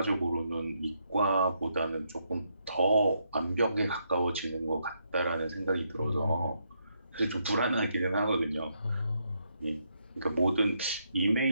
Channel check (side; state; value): both; inverted; correlation -0.77